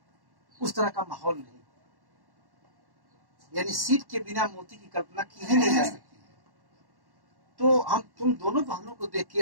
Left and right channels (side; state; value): left; late; 1.1 ms